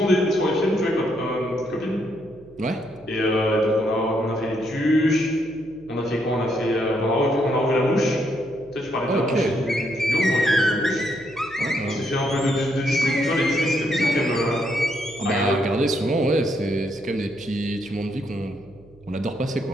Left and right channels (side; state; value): right; noise; hum, 25 dB below the sound